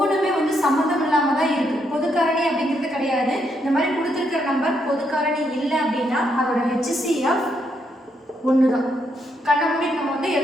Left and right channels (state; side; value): normal; both; correlation 0.77